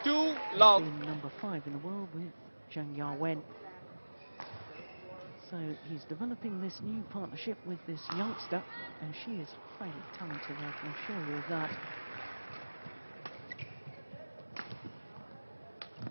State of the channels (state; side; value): inverted; both; correlation -1.00